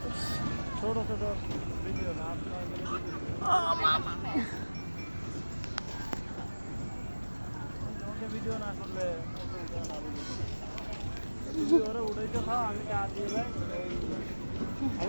ছোট ছোট ভিডিও না। ভিডিও না করলে উঠাইতে থাও, আমি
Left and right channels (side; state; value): both; inverted; correlation -1.00